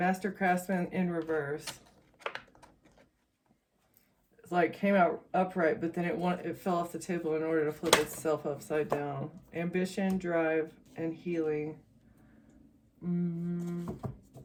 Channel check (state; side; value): identical; both; correlation 1.00